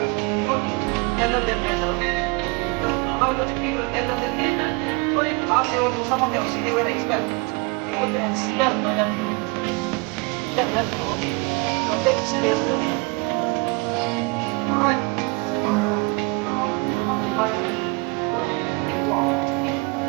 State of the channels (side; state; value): left; quieter; 28.1 dB